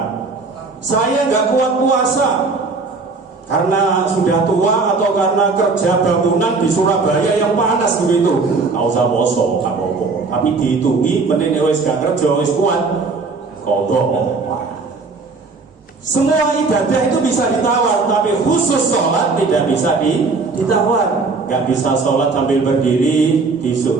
Saya nggak kuat puasa karena sudah tua atau karena kerja bangunan di Surabaya yang panas begitu. Nggak usah poso, nggak apa-apa. Tapi dihitungi, mending wis gak kerja, wis kuat, kodok. Semua ibadah itu bisa ditawar, tapi khusus sholat tidak bisa ditawar. Gak bisa sholat sambil berdiri,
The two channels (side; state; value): left; quieter; 4.1 dB